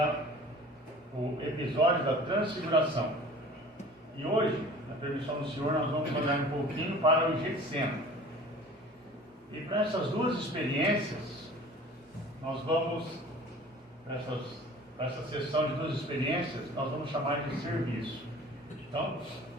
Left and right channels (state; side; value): normal; both; correlation 0.44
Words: o episódio da transfiguração. E hoje, na permissão do Senhor, nós vamos olhar um pouquinho para o Getsêmani. E para essas duas experiências, nós vamos, para essa sessão de duas experiências, nós vamos chamar de serviço. Então,